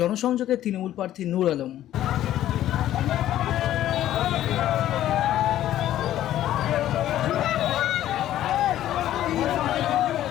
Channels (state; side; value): quieter; right; 12.8 dB